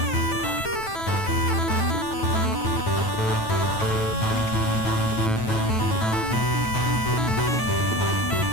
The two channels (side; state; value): right; late; 9.1 ms